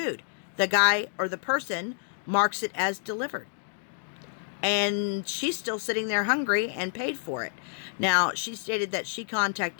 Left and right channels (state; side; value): silent; right; digital silence